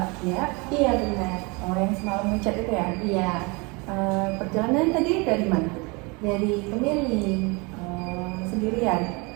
Kia. Iya benar. Oh, yang semalam ngechat itu ya? Iya. Perjalanan tadi dari mana? Dari Pemilih. Sendirian?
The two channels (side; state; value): left; quieter; 28.4 dB